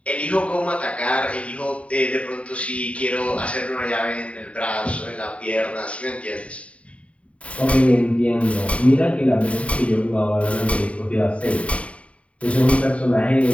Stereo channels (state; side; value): late; right; 0.064 ms